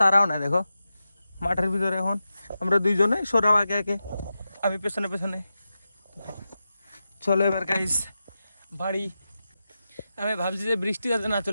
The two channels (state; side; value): inverted; both; correlation -0.91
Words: তারাও না। দেখো মাঠের ভিতরে এখন আমরা দুইজনে সরাব আগে আগে, আমি পেছনে পেছনে। চলো এবার গাইস বাড়ি। আমি ভাবছি যে বৃষ্টি যাতে না